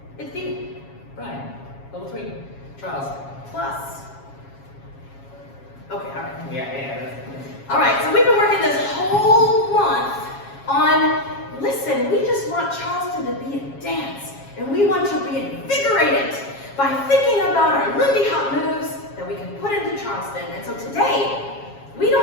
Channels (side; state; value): right; late; 7.3 ms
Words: It's Steve. Brian. Level 3. Charles. Plus. Okay, alright. Yeah. Alright, so we've been working this whole month on, listen, we just want Charleston to be a dance. And we want to reinvigorate it by thinking about our Lindy Hop moves that we can put into Charleston. And so today, we